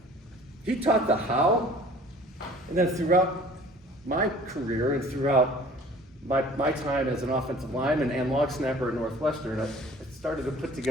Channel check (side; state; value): both; normal; correlation 0.49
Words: he taught the how, and then throughout my career and throughout my time as an offensive lineman and long snapper at Northwestern, I started to put